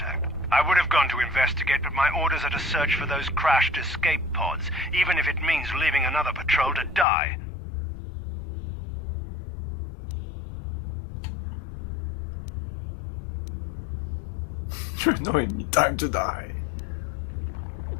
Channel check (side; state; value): right; drops out; at 7.1 s